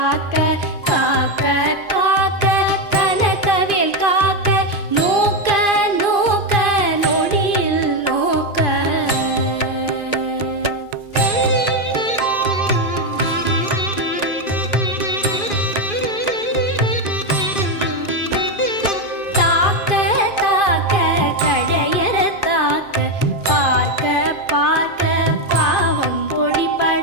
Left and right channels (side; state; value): right; late; 2.5 ms